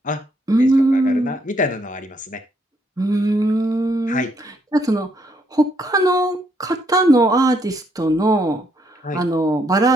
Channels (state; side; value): normal; both; correlation 0.72